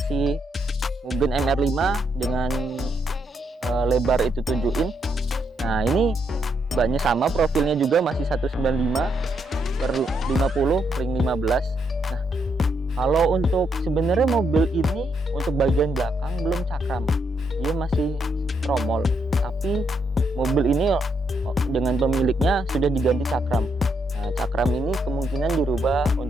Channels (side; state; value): both; normal; correlation 0.77